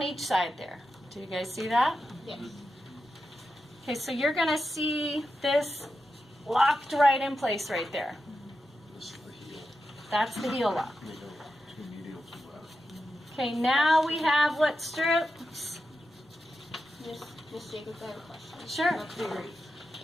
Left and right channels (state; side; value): normal; both; correlation 0.90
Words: each side there. Do you guys see that? Yes. Okay, so you're going to see this locked right in place right there. This is the heel. That's the heel lock. Medial, two medial, two lateral. Okay, now we have what strips? Miss Jacobs, I have a question. Sure. Not clear.